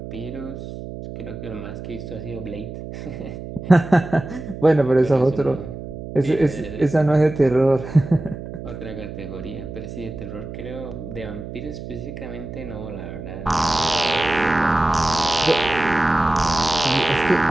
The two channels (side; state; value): right; noise; hum, 10 dB below the sound